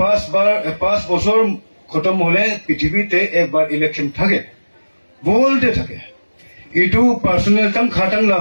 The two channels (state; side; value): inverted; both; correlation -1.00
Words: বছৰ খতম হলে পৃথিৱীতে একবাৰ ইলেকশ্যন থাকে বলতে থাকে এইটো পাৰ্চনেল খাটাং